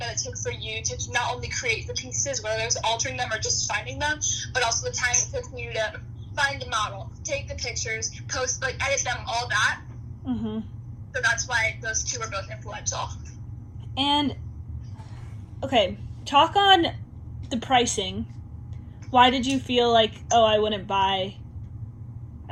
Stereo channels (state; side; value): identical; both; correlation 1.00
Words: it took for you to not only create the pieces, whether it was altering them or just finding them, but also the time it took for you to find the model, take the pictures, post, edit them, all that. Mm-hmm. So that's why those two are both influential. And, okay, talk on the pricing. Why did you feel like, I wouldn't